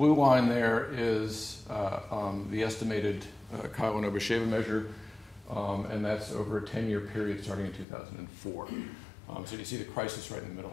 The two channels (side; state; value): right; drops out; at 7.9 s